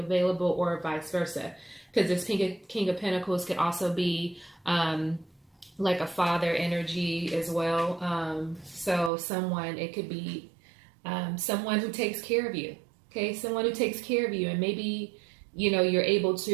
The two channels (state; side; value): drops out; left; at 9.1 s